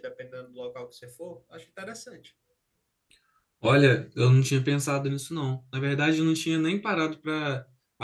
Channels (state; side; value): identical; both; correlation 1.00